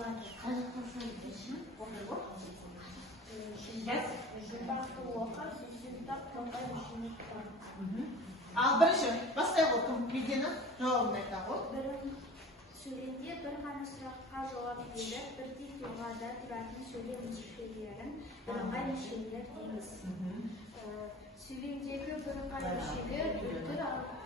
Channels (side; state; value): both; normal; correlation 0.40